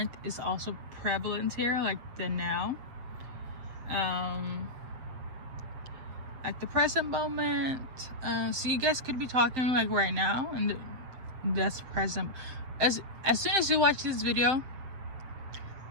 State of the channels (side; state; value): left; late; 7.7 ms